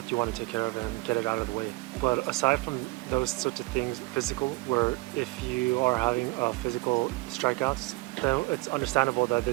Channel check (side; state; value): left; quieter; 23.5 dB